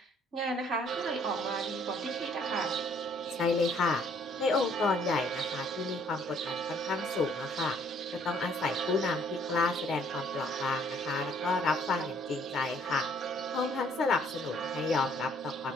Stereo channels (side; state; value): both; normal; correlation 0.63